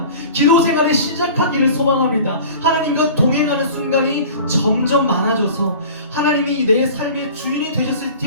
기도 생활을 시작하기를 소망합니다. 하나님과 동행하는 순간이 점점 많아져서 하나님이 내 삶의 주인이 되셨을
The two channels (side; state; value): both; inverted; correlation -0.41